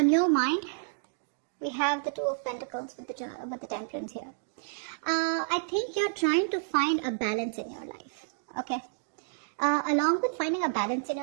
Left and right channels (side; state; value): left; silent; digital silence